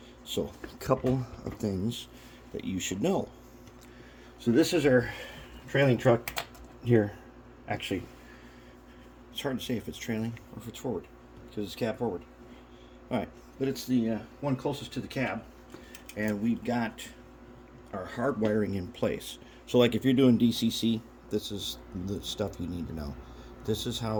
So, a couple of things that you should know. So this is our trailing truck here. Actually, it's hard to say if it's trailing or if it's forward because it's cab forward. All right, but it's the one closest to the cab, and we've got our hard wiring in place. So like if you're doing DCC, this is the stuff you need to know. This is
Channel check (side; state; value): both; identical; correlation 1.00